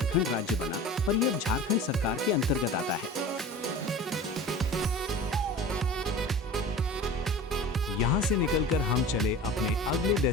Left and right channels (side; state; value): both; normal; correlation 0.37